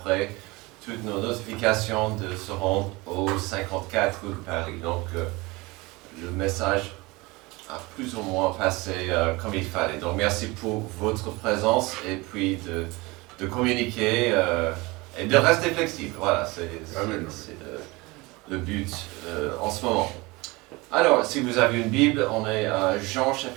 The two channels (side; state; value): left; quieter; 23.5 dB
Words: toutes nos notifications de se rendre au 54 rue de Paris. Donc, le message a plus ou moins passé comme il fallait. Donc, merci pour votre présence et puis de communiquer et de rester flexible. Voilà, c'est le but en ce moment. Alors, si vous avez une Bible, on est à Jean